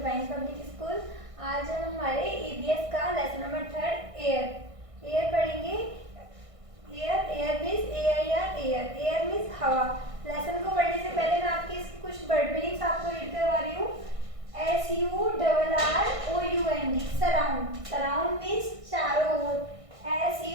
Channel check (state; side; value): late; left; 1.6 ms